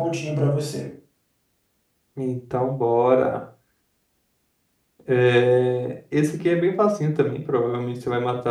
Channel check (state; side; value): identical; both; correlation 1.00